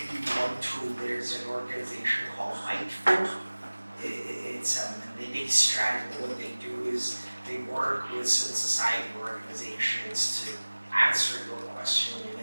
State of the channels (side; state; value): both; inverted; correlation -1.00